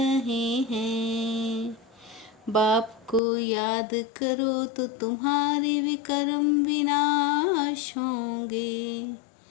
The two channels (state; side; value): drops out; right; at 3.2 s